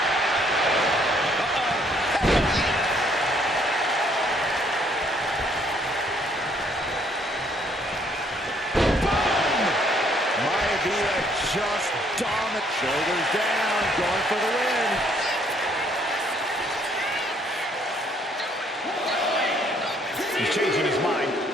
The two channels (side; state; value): both; normal; correlation 0.66